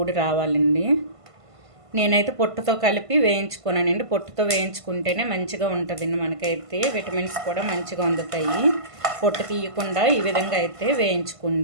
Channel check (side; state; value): left; late; 1.5 ms